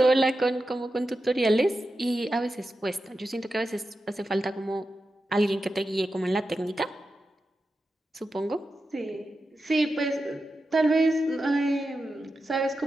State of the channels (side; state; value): both; normal; correlation 0.90